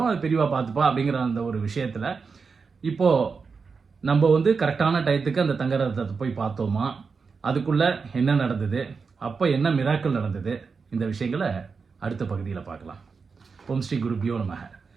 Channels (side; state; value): left; quieter; 5.1 dB